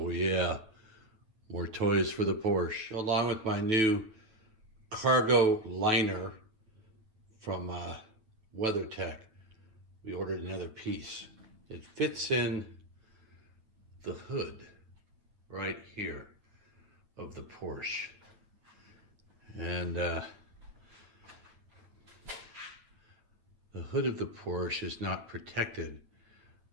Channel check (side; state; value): left; late; 9.1 ms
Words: yeah, more toys for the Porsche. Along with my new cargo liner from WeatherTech, we ordered another piece. It fits in the hood right here of the Porsche. And the hood of the Porsche is not protected